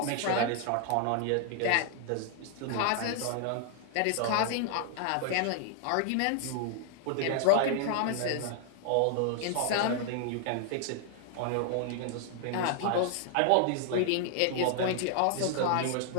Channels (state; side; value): different; both; correlation 0.00